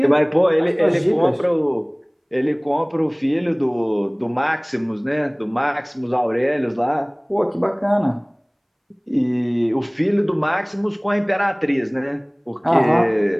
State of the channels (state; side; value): identical; both; correlation 1.00